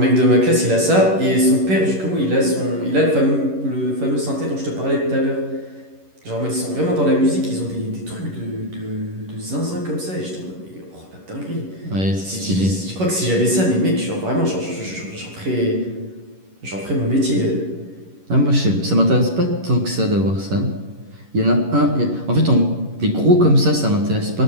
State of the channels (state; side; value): late; left; 11 ms